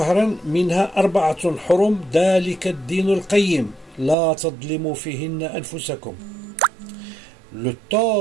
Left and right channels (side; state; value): left; drops out; at 4.2 s